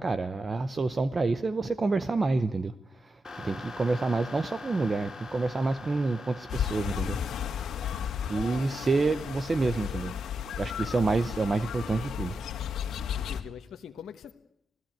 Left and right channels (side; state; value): both; normal; correlation 0.87